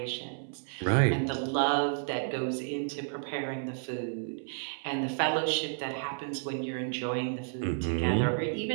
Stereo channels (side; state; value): left; silent; 57 dB below the other